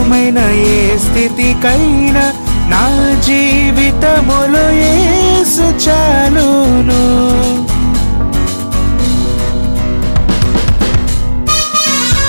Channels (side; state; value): both; inverted; correlation -1.00